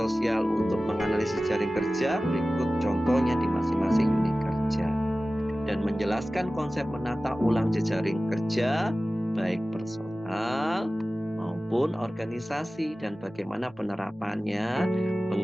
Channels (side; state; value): both; normal; correlation 0.96